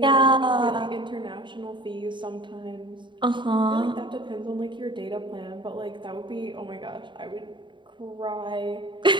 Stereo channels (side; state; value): left; late; 0.23 ms